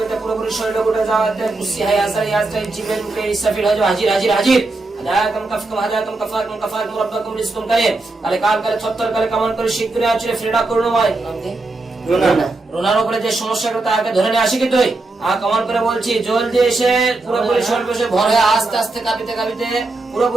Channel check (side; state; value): left; quieter; 3.2 dB